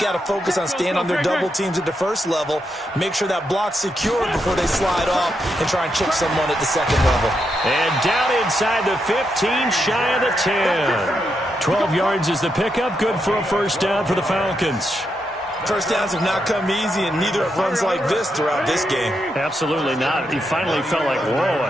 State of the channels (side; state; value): both; normal; correlation 0.82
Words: to focus on staying on their double teams at the first level, make sure that block's secure before they slide off and try and chip someone at the second level. And down inside the 15, shy of the 10. 12 yards is the pickup, good for a first first down for the Falcons. First downs have not come easy, and neither have runs like this throughout this game. Absolutely not. He finally felt like, whoa,